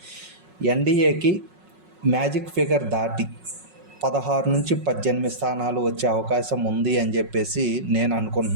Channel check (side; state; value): left; late; 5.4 ms